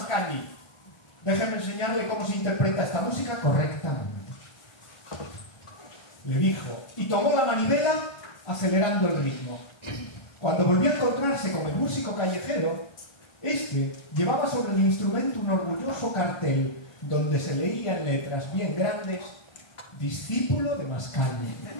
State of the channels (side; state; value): right; late; 1.4 ms